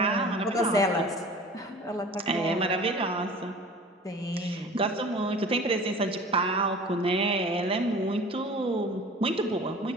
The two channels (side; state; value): both; normal; correlation 0.42